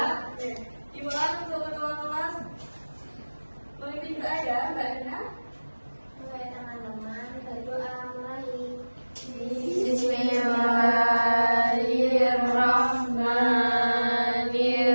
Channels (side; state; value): both; inverted; correlation -1.00